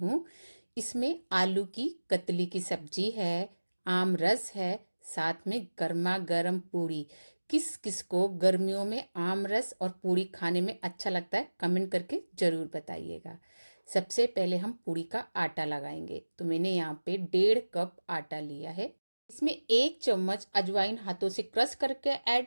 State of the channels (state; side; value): inverted; both; correlation -1.00